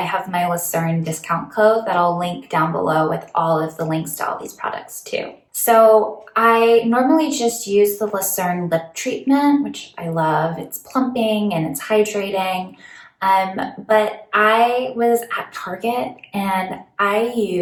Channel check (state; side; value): identical; both; correlation 1.00